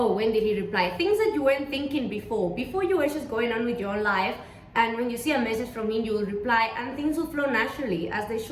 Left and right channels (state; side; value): identical; both; correlation 1.00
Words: when did he reply? Things that you weren't thinking before you were just going on with your own life, and when you see a message from him, you will reply, and things will flow naturally as they